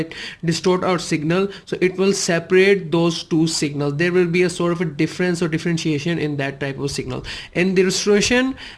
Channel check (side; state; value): both; identical; correlation 1.00